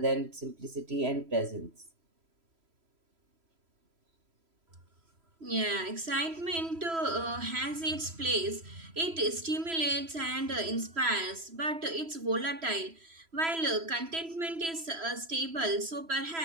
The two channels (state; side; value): late; left; 3.0 ms